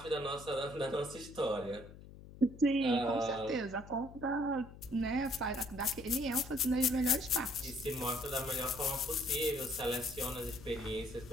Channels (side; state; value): left; noise; hum, 17 dB below the sound